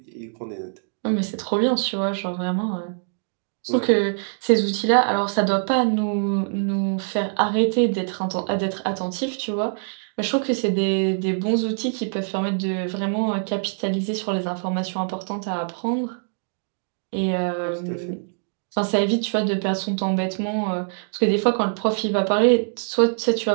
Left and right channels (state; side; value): silent; left; digital silence